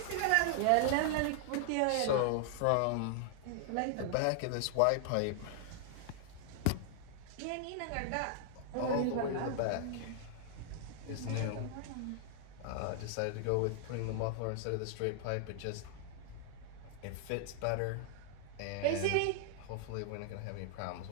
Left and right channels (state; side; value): different; both; correlation 0.00